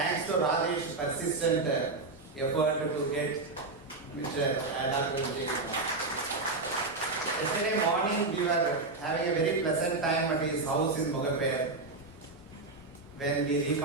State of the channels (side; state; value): left; quieter; 3.6 dB